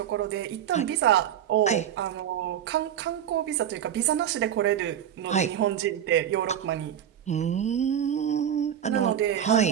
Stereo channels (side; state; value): left; quieter; 10.0 dB